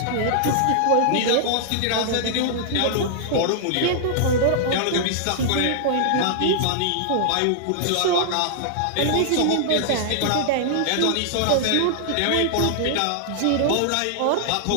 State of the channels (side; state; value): both; different; correlation -0.01